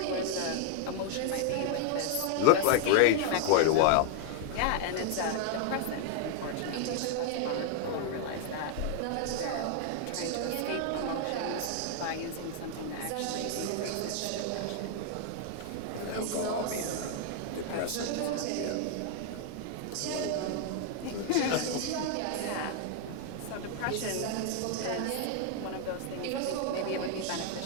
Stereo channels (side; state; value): both; different; correlation 0.00